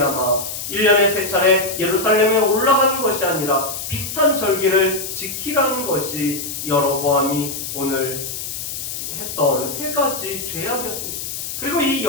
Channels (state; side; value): noise; left; hiss, 6 dB below the sound